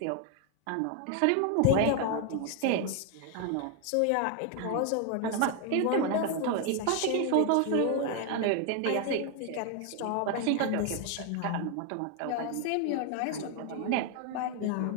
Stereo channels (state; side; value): different; both; correlation 0.00